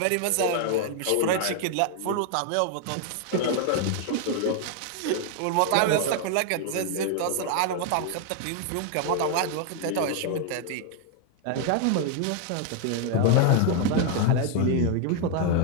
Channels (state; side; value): different; both; correlation 0.00